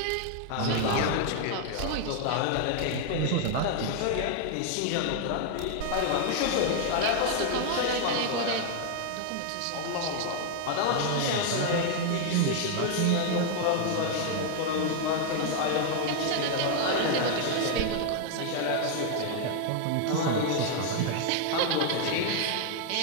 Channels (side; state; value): both; different; correlation 0.00